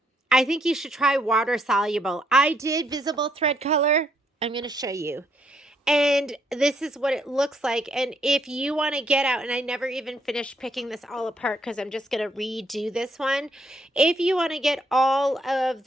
I think you should try water-soluble. I did visible thread color. I'm going to show you. And this is what it looks like. And if you want to get out, and I never even finished picking this all apart because I'm just going to redo this one. If you want to get all of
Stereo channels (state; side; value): normal; both; correlation 0.72